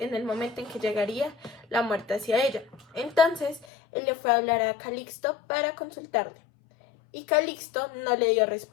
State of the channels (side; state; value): right; drops out; at 3.7 s